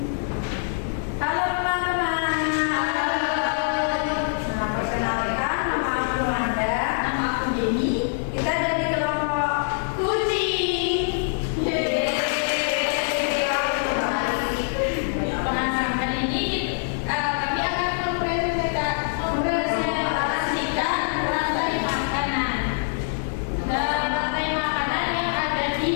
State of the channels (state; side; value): silent; right; digital silence